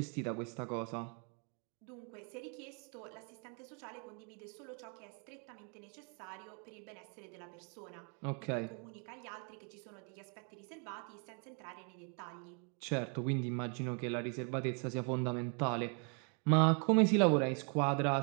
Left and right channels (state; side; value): quieter; left; 38.9 dB